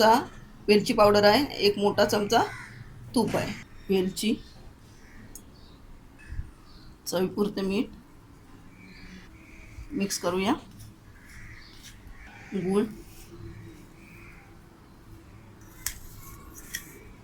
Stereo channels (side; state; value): both; identical; correlation 1.00